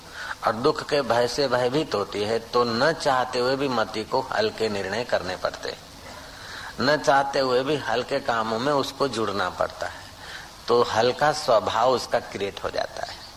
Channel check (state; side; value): identical; both; correlation 1.00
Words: और दुख के भय से भयभीत होती है। तो न चाहते हुए भी मति को हल्के निर्णय करने पड़ते, न चाहते हुए भी हल्के कामों में उसको जुड़ना पड़ता है, तो हल्का स्वभाव उसका क्रिएट हो जाता